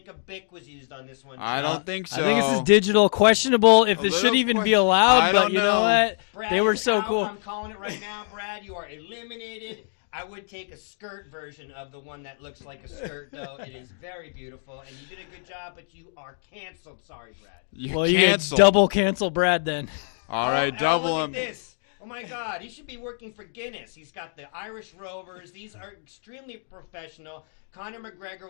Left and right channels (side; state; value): right; silent; digital silence